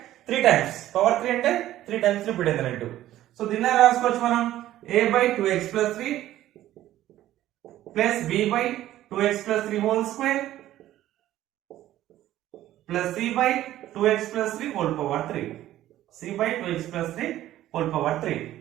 3 times, power 3 అంటే 3 times repeated అన్నట్టు. సో దీన్ని రాసుకోవచ్చు మనం a by 2x plus 3 plus b by 2x plus 3 whole square plus c by 2x plus 3 whole power 3. c by 2x plus 3 whole power 3.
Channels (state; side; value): quieter; left; 13.7 dB